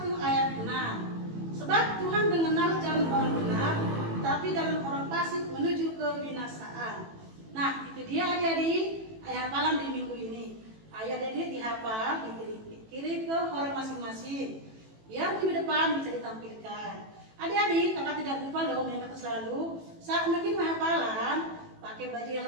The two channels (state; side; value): late; left; 18 ms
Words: ayat 6. Sebab Tuhan mengenal jalan orang benar, tapi jalan orang fasik menuju kebinasaan. Nah, itu dia adik-adik ayat hafalan di minggu ini. Ayo adik-adik dihafal, dikirim ke orang masing-masing. Biar minggu depan bisa ditampilkan. Adik-adik, kakak tidak lupa loh mengingatkan selalu saat bikin hafalan, pakai baju yang